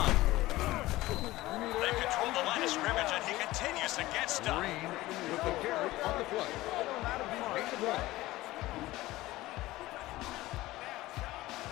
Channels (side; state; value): right; quieter; 17.7 dB